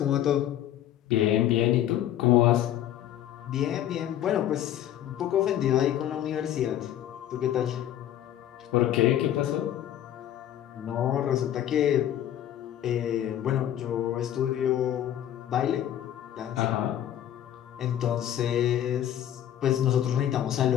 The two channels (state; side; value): quieter; right; 11.4 dB